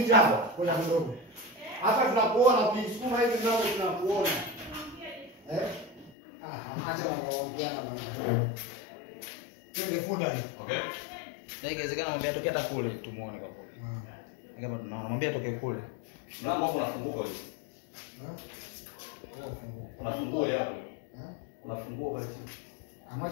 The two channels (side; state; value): right; drops out; at 6.2 s